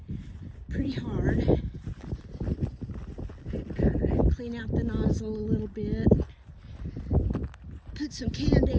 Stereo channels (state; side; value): identical; both; correlation 1.00